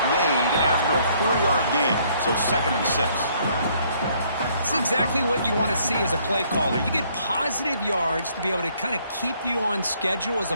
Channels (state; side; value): inverted; both; correlation -0.65